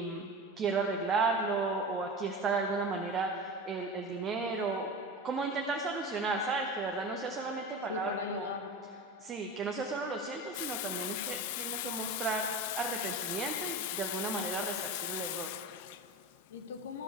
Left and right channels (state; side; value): normal; both; correlation 0.29